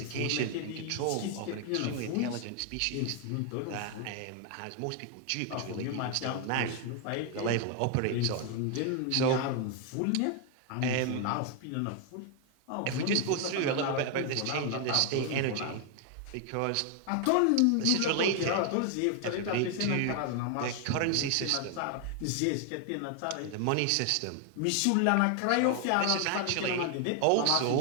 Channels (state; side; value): different; both; correlation 0.00